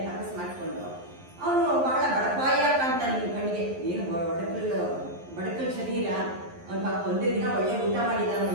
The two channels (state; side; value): late; left; 11 ms